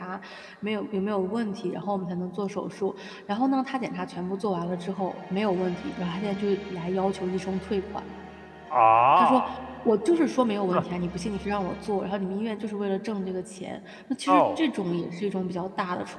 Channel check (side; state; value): both; identical; correlation 1.00